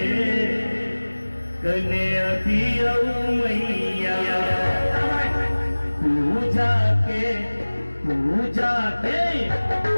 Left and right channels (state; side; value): inverted; both; correlation -1.00